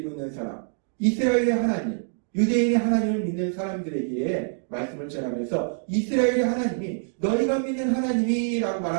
있는 사람, 이스라엘의 하나님, 유대인의 하나님을 믿는 사람들에게 말씀을 전하면서 이스라엘의 하나님이 너희가 믿는 하나님이라고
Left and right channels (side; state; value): left; silent; 60 dB below the other